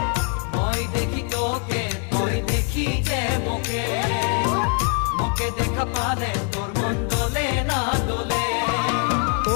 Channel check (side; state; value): right; quieter; 36.6 dB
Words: মই দেখি তোকে তুই দেখি যে মোকে মোকে দেখা পারে তোর মন দোলে না দোলে